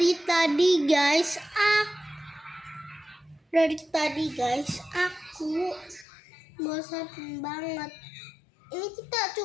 tadi guys, aku bosan banget. Ini kita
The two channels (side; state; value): right; drops out; at 6.1 s